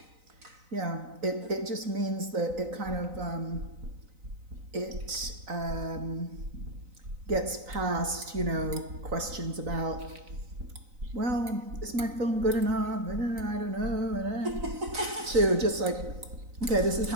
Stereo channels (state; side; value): late; left; 3.9 ms